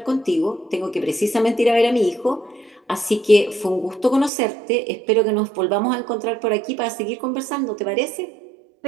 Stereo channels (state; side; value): drops out; left; at 4.3 s